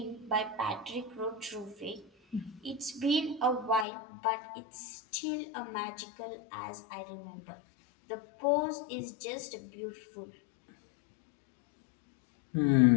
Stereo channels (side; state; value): right; drops out; at 3.9 s